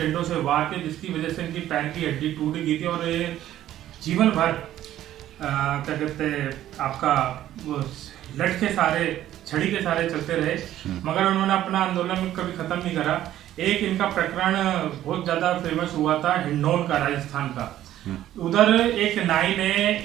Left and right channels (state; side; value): quieter; left; 12.8 dB